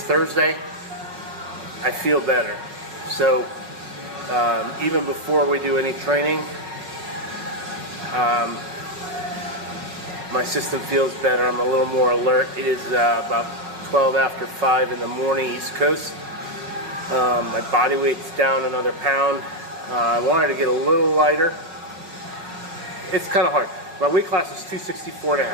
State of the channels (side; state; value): left; late; 5.1 ms